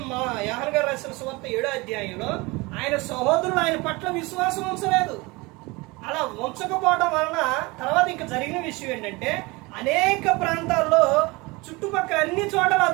మా యోహాను గారు రాసిన సువార్త 7వ అధ్యాయంలో ఆయన సహోదరులు ఆయన పట్ల విశ్వాసం ఉంచలేదు. అలా ఉంచకపోవడం వలన తర్వాత ఇంకా జరిగిన విషయం ఏంటంటే, అనేక ప్రాంతాల్లో చుట్టుపక్కల అన్ని చోట్ల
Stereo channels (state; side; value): quieter; left; 24.4 dB